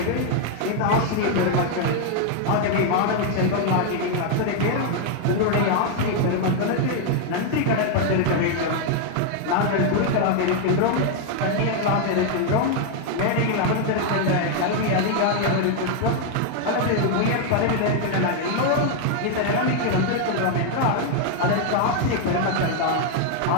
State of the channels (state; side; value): different; both; correlation 0.00